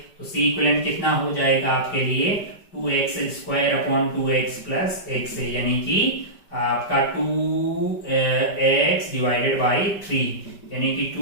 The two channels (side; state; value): right; late; 5.1 ms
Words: तो C इक्विवेलेंट कितना हो जाएगा आपके लिए, 2x square upon 2x plus x है, यानी कि आपका 2x डिवाइडेड बाई 3, यानी कि